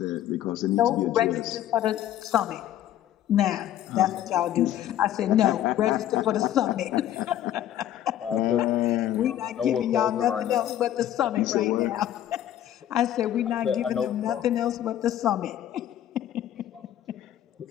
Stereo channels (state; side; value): quieter; right; 11.8 dB